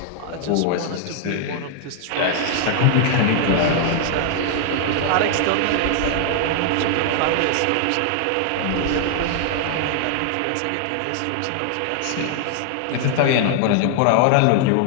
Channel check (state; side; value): different; both; correlation 0.00